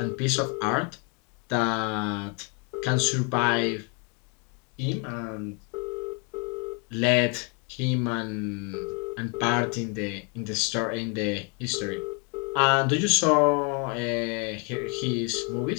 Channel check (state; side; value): quieter; right; 35.3 dB